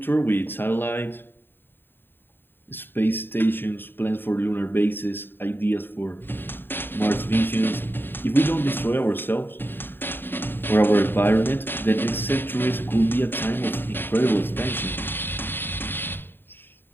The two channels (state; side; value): late; right; 0.097 ms